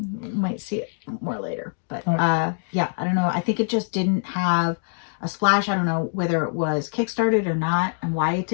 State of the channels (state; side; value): silent; right; digital silence